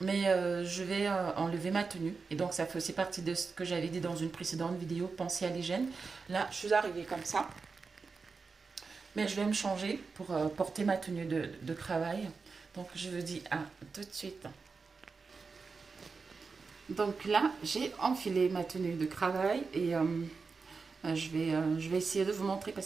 je vais enlever ma tenue, et donc ça fait aussi partie de ce que j'avais dit dans une précédente vidéo, penser à l'hygiène. Là, je suis arrivée comme ça. Mais je vais me changer pour porter ma tenue de travail. Donc je vous dis à tout de suite. Donc là, j'ai enfilé ma tenue de travail et je vais essayer de vous montrer parce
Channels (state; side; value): quieter; left; 4.7 dB